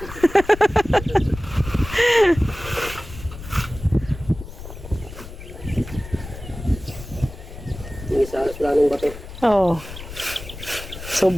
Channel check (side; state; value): left; noise; rumble, 13 dB below the sound